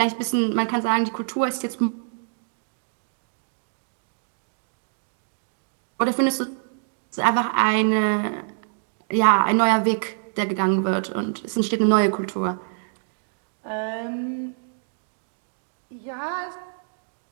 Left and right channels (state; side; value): silent; left; digital silence